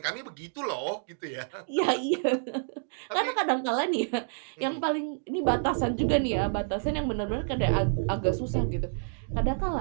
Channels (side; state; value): left; silent; digital silence